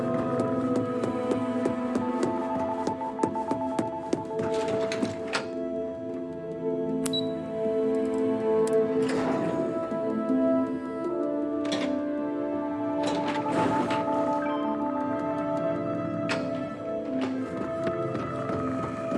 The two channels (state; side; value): identical; both; correlation 1.00